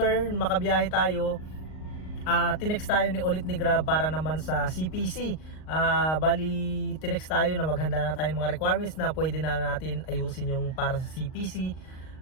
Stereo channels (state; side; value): late; right; 38 ms